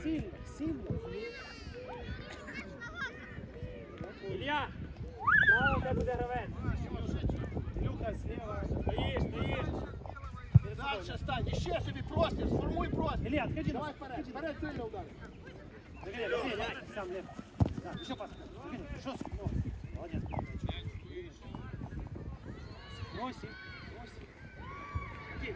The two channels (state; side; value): identical; both; correlation 1.00